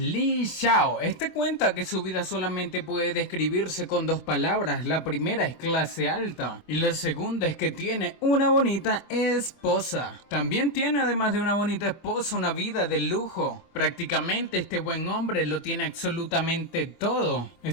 Xiao. Este cuenta que su vida solamente puede describirse con dos palabras. La primera es clase alta y la segunda es que tiene una bonita esposa. También tiene, además de una bonita esposa, una vida de lujo. Prácticamente este buen hombre lo tiene absolutamente todo.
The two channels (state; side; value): late; right; 25 ms